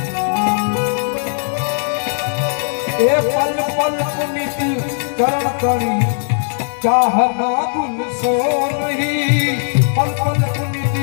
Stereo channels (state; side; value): silent; right; 57 dB below the other